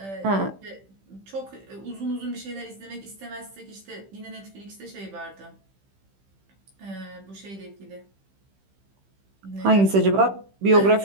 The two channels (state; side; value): late; left; 15 ms